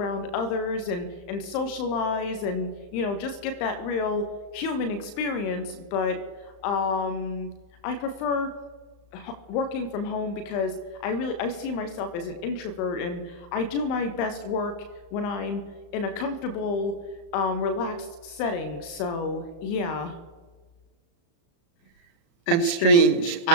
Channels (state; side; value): late; right; 35 ms